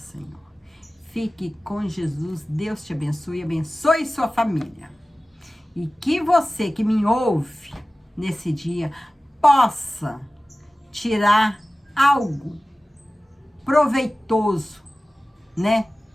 Fique com Jesus, Deus te abençoe, abençoe sua família. E que você que me ouve nesse dia possa tirar algo proveitoso, né,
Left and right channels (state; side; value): normal; both; correlation 0.96